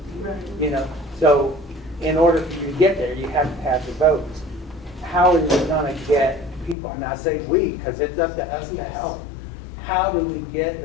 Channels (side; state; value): right; drops out; at 6.8 s